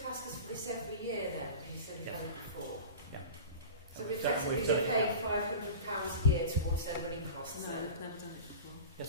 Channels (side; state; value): both; inverted; correlation -0.33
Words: ask us for this every year then? Because you said you've done it before. Yeah. So we've effectively paid £500 a year towards their running costs. No, we've never done it before.